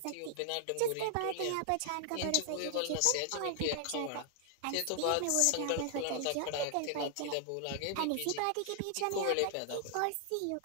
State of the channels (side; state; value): both; different; correlation 0.00